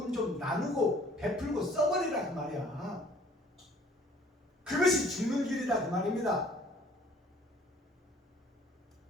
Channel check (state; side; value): normal; both; correlation 0.56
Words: 좀 나누고 베풀고 써버리라 그 말이야. 그것이 죽는 길이다 그 말입니다.